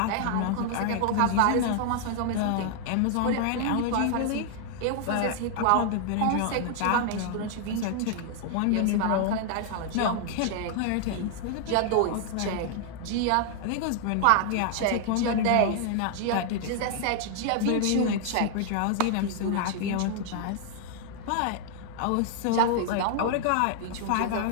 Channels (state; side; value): different; both; correlation 0.00